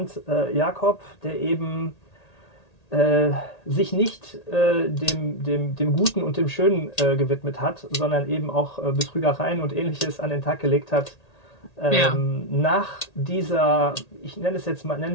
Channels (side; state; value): right; late; 1.8 ms